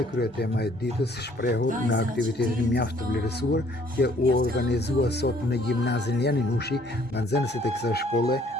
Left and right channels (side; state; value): both; normal; correlation 0.61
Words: kryetema e ditës shprehur në aktivitetin mjaft të vlerësuar që u organizua sot në gjimnazin Janinushi nga nxënësit e kësaj shkolle